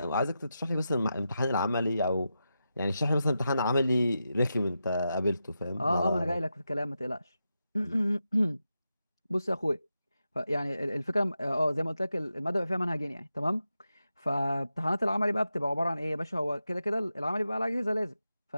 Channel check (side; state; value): both; inverted; correlation -0.89